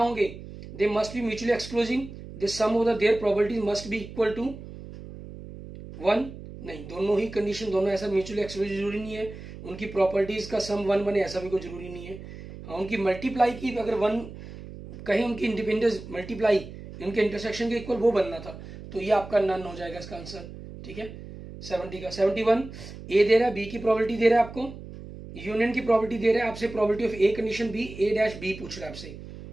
they must be mutually exclusive, the sum of the their probabilities must be equal to 1, नहीं, दोनों ही कंडीशन, दोनों ऐसा म्यूचुअली एक्सक्लूसिव जरूरी नहीं है, उनकी प्रॉपर्टीज का सम 1 बने ऐसा भी कोई जरूरी नहीं है। हाँ, उनकी मल्टीप्लाई की अगर 1 कहीं उनकी इंडिपेंडेंस मल्टीप्लाई उनके इंटरसेक्शन के इक्वल वो बनना था, तो ये आपका नन हो जाएगा इसका आंसर। ठीक है, 70 का 71 ए दे रहा है, बी की प्रॉपर्टी दे रहा है आपको, यूनियन की प्रॉपर्टी दे रहा है आपसे, property of A condition B, A dash B पूछ रहा है आपसे।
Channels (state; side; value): noise; right; hum, 13 dB below the sound